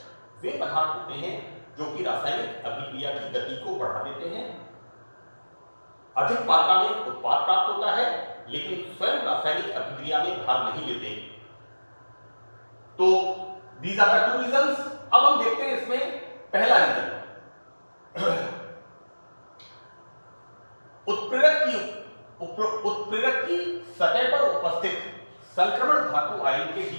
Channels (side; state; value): both; inverted; correlation -1.00